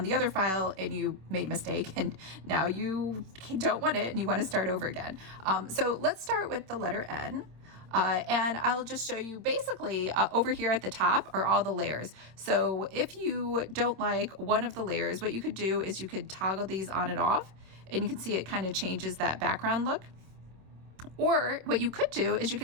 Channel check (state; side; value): late; left; 26 ms